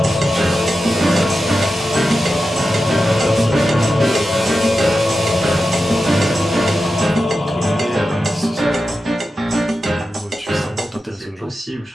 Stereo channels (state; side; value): normal; both; correlation 0.91